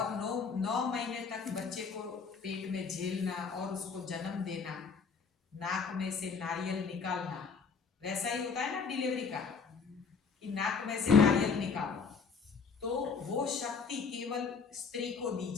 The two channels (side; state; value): right; quieter; 5.4 dB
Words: 9 महीने तक बच्चे को पेट में झेलना और उसको जन्म देना, नाक में से नारियल निकालना, वैसा ही होता है ना डिलीवरी का, कि नाक में से नारियल निकालो, तो वो शक्ति केवल स्त्री को दी